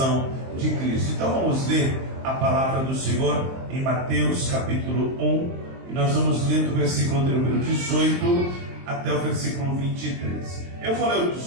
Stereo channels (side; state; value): left; late; 23 ms